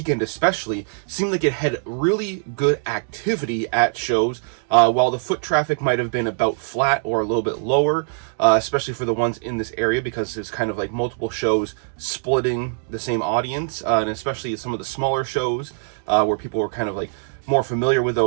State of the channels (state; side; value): silent; left; digital silence